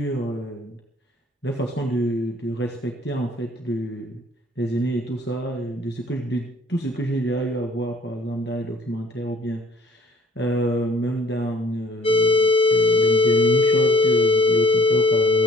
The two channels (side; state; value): both; normal; correlation 0.56